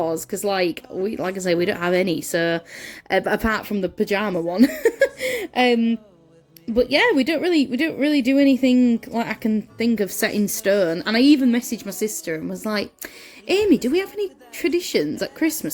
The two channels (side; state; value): both; identical; correlation 1.00